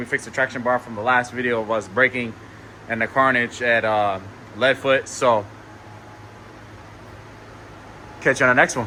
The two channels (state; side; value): identical; both; correlation 1.00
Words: fixed the traction bar from the last video of us braking and the carnage at Leadfoot. So catch you on the next